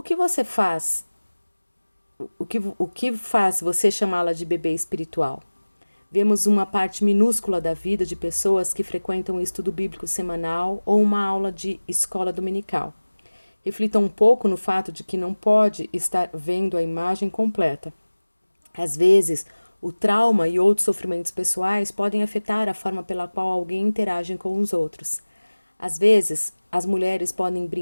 que você faz? O que faz você chamá-la de bebê espiritual? Vemos uma parte minúscula da vida de pessoas que frequentam um estudo bíblico semanal ou uma aula de escola dominical. Reflita um pouco no fato de que não pode estar vendo a imagem completa. Às vezes, o trauma e outros sofrimentos pessoais podem afetar a forma pela qual alguém interage com os outros. Às vezes, as mulheres podem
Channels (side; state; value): both; inverted; correlation -1.00